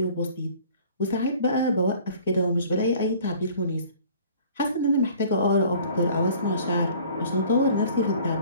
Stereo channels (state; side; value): inverted; both; correlation -0.51